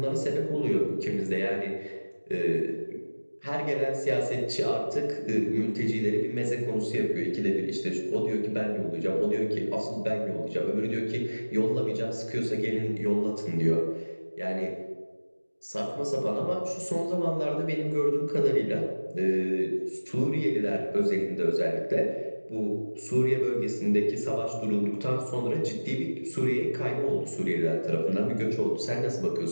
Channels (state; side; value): inverted; both; correlation -1.00